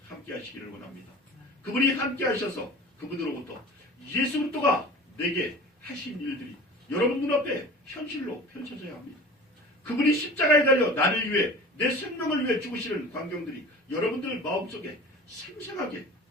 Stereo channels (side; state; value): both; normal; correlation 0.39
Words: 함께 하시기를 원합니다. 그분이 함께 하셔서 그분으로부터 예수 그리스도가 내게 하신 일들이 여러분 눈앞에 현실로 펼쳐져야 합니다. 그분이 십자가에 달려 나를 위해 내 생명을 위해 죽으시는 광경들이 여러분들 마음속에 생생하게